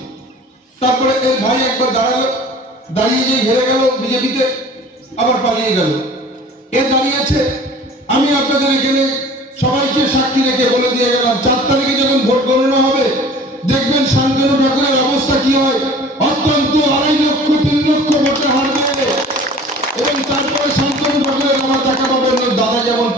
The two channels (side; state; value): both; normal; correlation 0.45